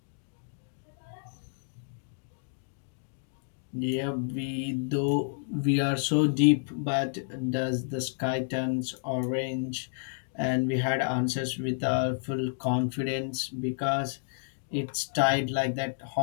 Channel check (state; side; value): silent; right; digital silence